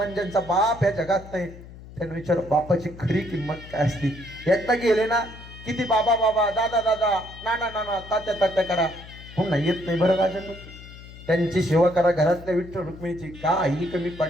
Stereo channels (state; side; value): noise; left; hum, 17 dB below the sound